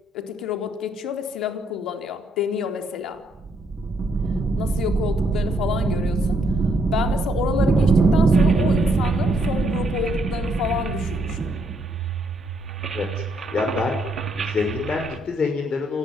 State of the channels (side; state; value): both; normal; correlation 0.72